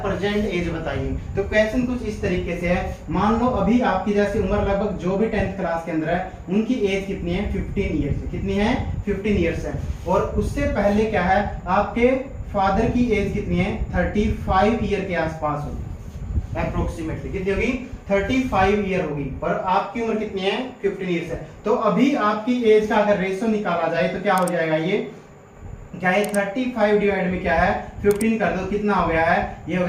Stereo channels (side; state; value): both; identical; correlation 1.00